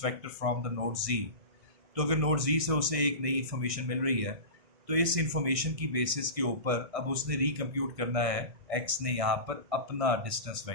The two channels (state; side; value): late; left; 1.6 ms